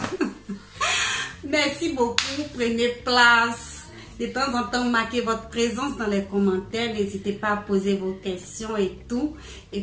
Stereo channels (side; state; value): both; identical; correlation 1.00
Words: Merci beaucoup, prenez place. De temps en temps, marquez votre présence dans les commentaires. N'hésitez pas à poser vos questions et tout. Et